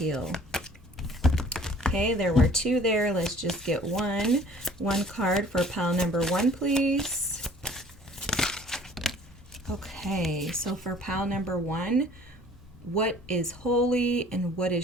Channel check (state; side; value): normal; both; correlation 0.52